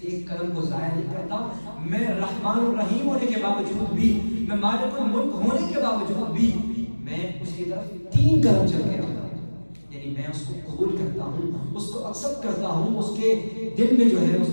ایک قدم کو ضائع نہیں کرتا، میں رحمان الرحیم ہونے کے باوجود بھی، میں مالک الملک ہونے کے باوجود بھی میں اس کی طرف 3 قدم چل کے آتا ہوں، یعنی میں اس کو قبول کرتا ہوں، اس کو ایکسپٹ کرتا ہوں، اس کے دل میں جو ہے اس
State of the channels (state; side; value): inverted; both; correlation -1.00